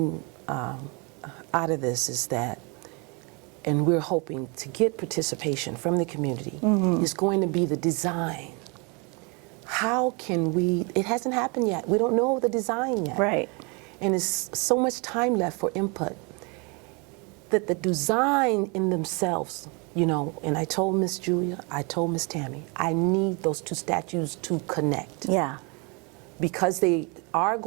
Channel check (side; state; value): left; quieter; 31.4 dB